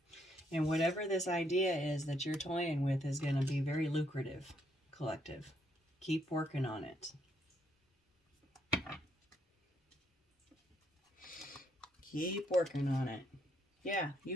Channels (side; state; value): both; normal; correlation 0.73